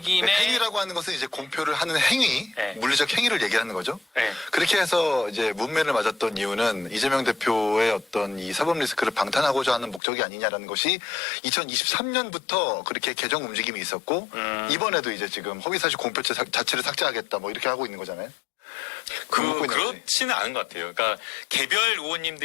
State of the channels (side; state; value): right; drops out; at 10.0 s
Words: 행위라고 하는 것은 이제 공표를 하는 행위, 네. 물리적 행위를 얘기하는 거죠. 네. 그렇게 해서 이제 문매를 맞았던 이유는 이재명 대표의 어떤 이 사법 리스크를 방탄하고자 하는 목적이 아니냐라는 것이 2023년부터 그렇게 개정 움직임이 있었고 이번에도 이제 지금 허위사실 공표 자체를 삭제하겠다 뭐 이렇게 하고 있는 거잖아요. 그렇지는 않은 것 같아요. 그러니까 개별